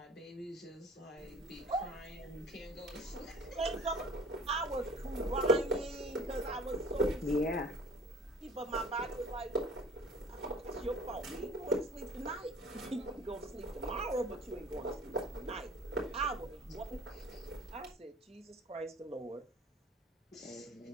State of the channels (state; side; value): normal; both; correlation 0.49